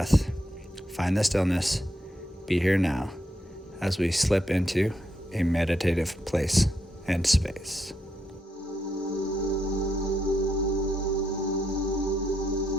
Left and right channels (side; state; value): both; normal; correlation 0.80